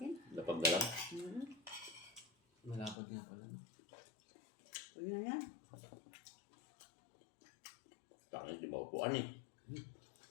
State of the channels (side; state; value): right; drops out; at 3.0 s